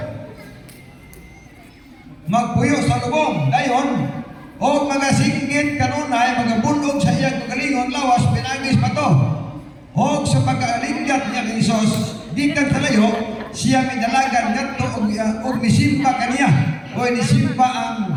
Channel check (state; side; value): identical; both; correlation 1.00